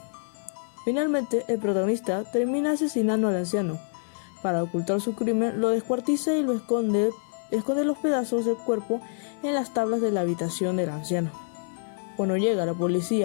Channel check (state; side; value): silent; right; digital silence